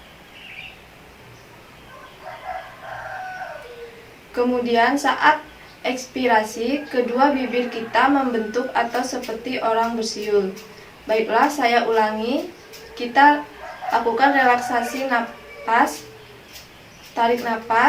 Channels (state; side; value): identical; both; correlation 1.00